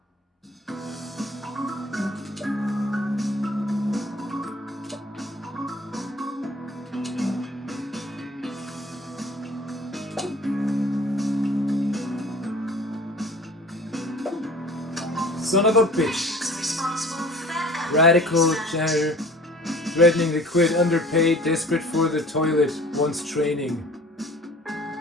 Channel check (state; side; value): normal; both; correlation 0.47